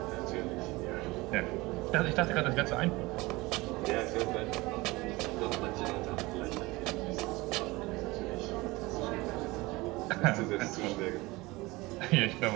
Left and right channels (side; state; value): left; quieter; 21.9 dB